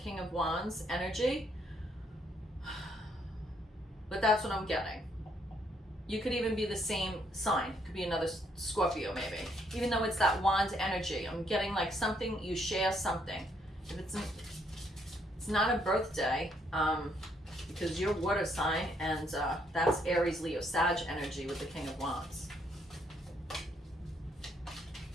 of Wands energy. But that's what I'm getting. You could even be the same sign. It could be another Scorpio maybe. Even though it's that wand energy, I'm getting like something, you share something. If it's not a birthday, because you're water sign, and that's Aries, Leo, Sag energy with the King of Wands.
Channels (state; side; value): normal; both; correlation 0.71